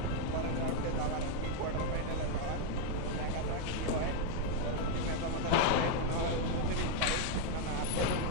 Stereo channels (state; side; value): different; both; correlation 0.00